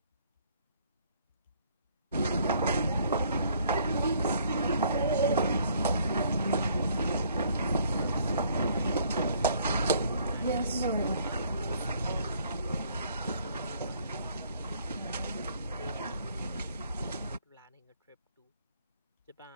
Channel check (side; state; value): both; inverted; correlation -0.62